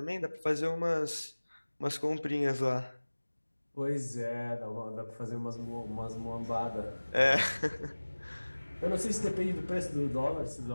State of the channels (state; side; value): inverted; both; correlation -1.00